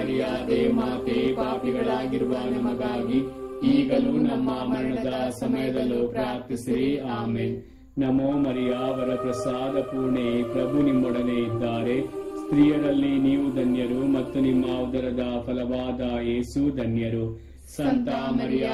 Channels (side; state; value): both; identical; correlation 1.00